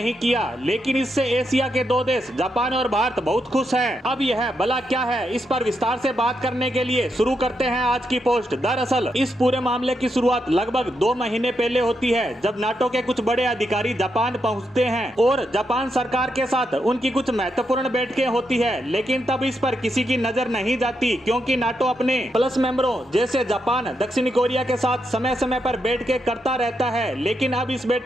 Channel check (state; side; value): normal; both; correlation 0.83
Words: किया। लेकिन इससे एशिया के दो देश जापान और भारत बहुत खुश हैं। अब यह बला क्या है, इस पर विस्तार से बात करने के लिए शुरू करते हैं आज की पोस्ट। दरअसल इस पूरे मामले की शुरुआत लगभग 2 महीने पहले होती है, जब नाटो के कुछ बड़े अधिकारी जापान पहुँचते हैं और जापान सरकार के साथ उनकी कुछ महत्वपूर्ण बैठकें होती है। लेकिन तब इस पर किसी की नजर नहीं जाती, क्योंकि नाटो अपने प्लस मेंबरों जैसे जापान, दक्षिणी कोरिया के साथ समय समय पर बैठकें करता रहता है। लेकिन अब इस